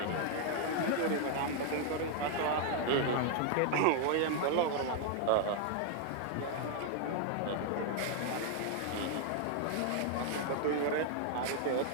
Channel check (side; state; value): both; different; correlation 0.00